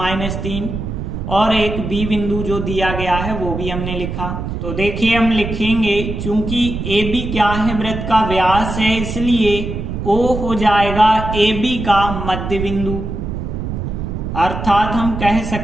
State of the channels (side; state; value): right; noise; rumble, 5 dB below the sound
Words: और एक B बिंदु जो दिया गया है वो भी हमने लिखा। तो देखिए हम लिखेंगे, चूंकि AB क्या है, वृत्त का व्यास है, इसलिए O हो जाएगा AB का मध्य बिंदु। अर्थात हम कह